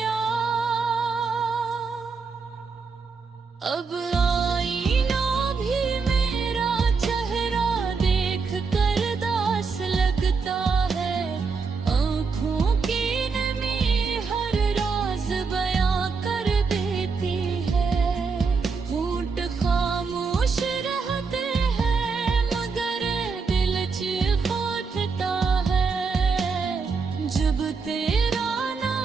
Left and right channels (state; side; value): quieter; left; 5.0 dB